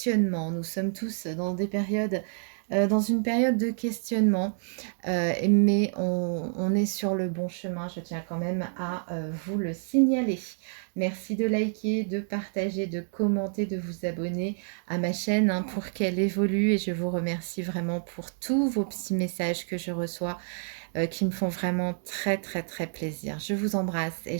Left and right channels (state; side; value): silent; left; 59 dB below the other